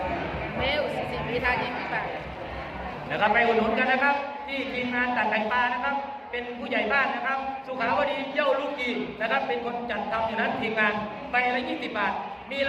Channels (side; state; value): both; identical; correlation 1.00